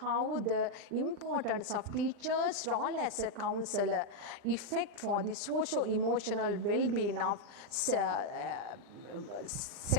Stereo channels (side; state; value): left; late; 40 ms